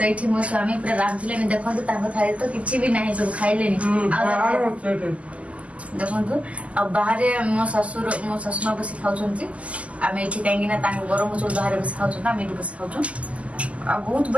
ये मो स्वामी पूरा रांधे देखो थाली तो किसी भी ना सब खाइले देखो आ बाहर मो शाशुमा बस खाऊँ आम ये कहीं गरम चूल बाहर बस खाऊँ आम ये बस खाऊँ आ बहुत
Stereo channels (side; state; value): left; late; 0.066 ms